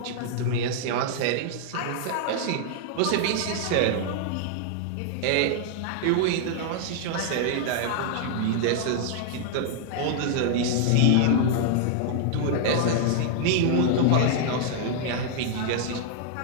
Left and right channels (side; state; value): both; different; correlation -0.01